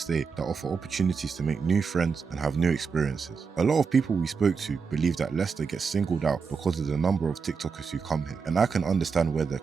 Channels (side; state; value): left; quieter; 5.5 dB